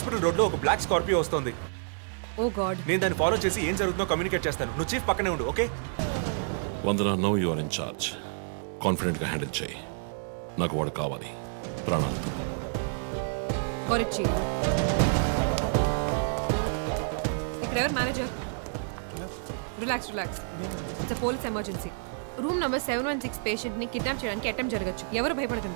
road లో ఒక బ్లాక్ స్కార్పియో వస్తుంది. Oh god. నేను దాన్ని ఫాలో చేసి ఏం జరుగుతుందో కమ్యూనికేట్ చేస్తాను. నువ్వు చీఫ్ పక్కనే ఉండు, okay? Vandana, now you are in charge. Confident గా హ్యాండిల్ చేయి. నాకు వాడు కావాలి, ప్రాణాలు. చీఫ్, ఇక్కడ ఎవరు manager? Relax relax. It's police emergency. Room number 716 patient ని కిడ్నాప్ చేయడానికి అటెంప్ట్ జరగచ్చు. ఎవరు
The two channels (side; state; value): left; silent; digital silence